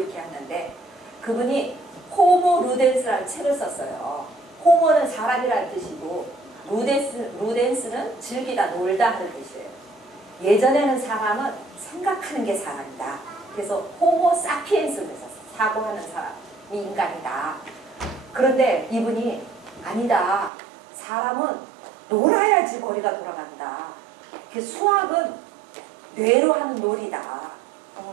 하는데 그분이 호모 루덴스라는 책을 썼어요. 호모는 사람이라는 뜻이고 루덴스는 즐기다 놀다 하는 뜻이에요. 예전에는 사람은 생각하는 게 사람이다. 그래서 호모 사피엔스를 썼어요. 사고하는 사람이 인간이다. 그런데 이분이 아니다. 사람은 놀아야지 머리가 돌아간다. 수학은 뇌로 하는 놀이다.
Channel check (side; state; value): left; drops out; at 20.5 s